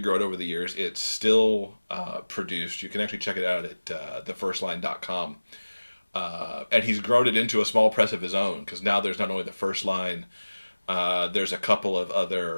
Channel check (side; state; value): both; inverted; correlation -1.00